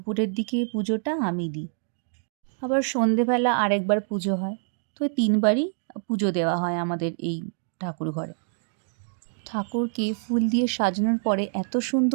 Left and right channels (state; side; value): silent; left; digital silence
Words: দিকে পুজোটা আমি দিই। আবার সন্ধেবেলা আরেকবার পুজো হয়। তো ৩ বারই পুজো দেওয়া হয় আমাদের এই ঠাকুর ঘরে। ঠাকুরকে ফুল দিয়ে সাজানোর পরে এত